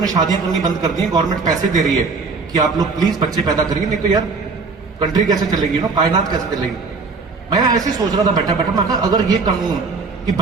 ने शादियां करनी बंद कर दी है। गवर्नमेंट पैसे दे रही है कि आप लोग प्लीज बच्चे पैदा करिए नहीं तो यार कंट्री कैसे चलेगी ना कायनात कैसे चलेगी। मैं ऐसे ही सोच रहा था बैठा बैठा मैं कहा अगर ये कानून कि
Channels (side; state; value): left; quieter; 4.3 dB